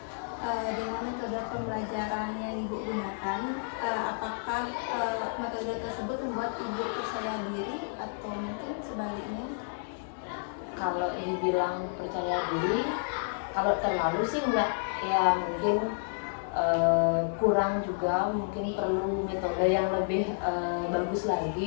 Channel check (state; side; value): silent; right; digital silence